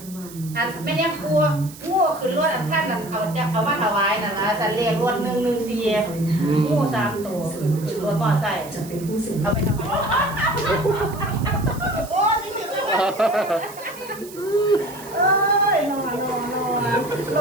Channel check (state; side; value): noise; right; hiss, 17 dB below the sound